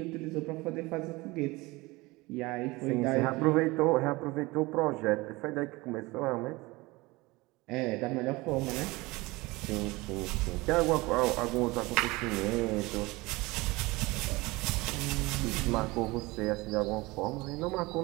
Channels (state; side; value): quieter; left; 22.3 dB